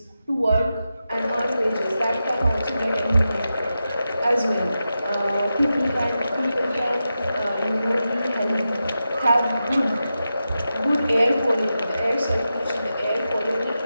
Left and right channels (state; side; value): inverted; both; correlation -0.90